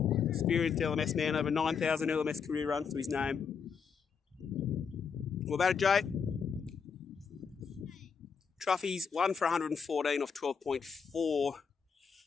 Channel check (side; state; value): right; quieter; 6.2 dB